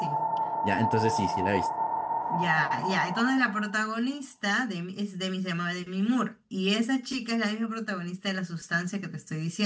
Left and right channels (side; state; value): both; identical; correlation 1.00